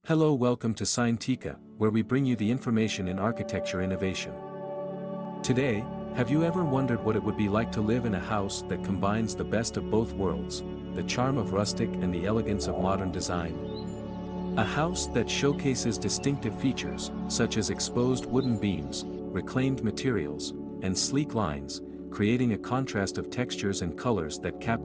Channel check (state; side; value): identical; both; correlation 1.00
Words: Hello, welcome to Scientica, where we bring you the information in architecture innovation. Today, have you ever wondered what it would be like to live in a house that combines the best of both worlds, the charm of rustic and the elegance of modern design? A house that showcases distinctive features, such as exposed wooden beams, reclaimed materials, and sleek lines, creating a contrast of textures and colors that